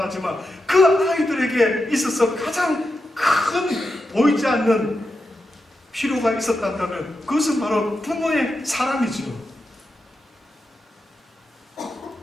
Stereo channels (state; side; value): normal; both; correlation 0.88